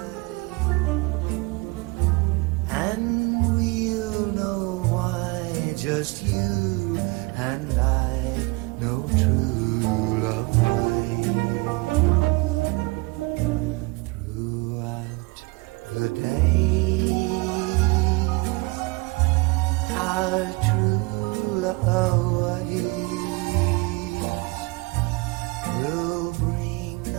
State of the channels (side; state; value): left; quieter; 25.9 dB